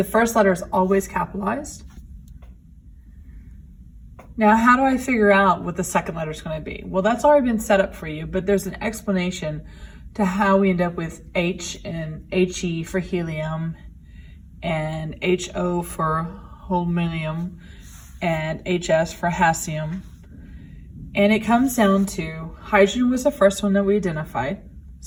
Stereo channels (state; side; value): identical; both; correlation 1.00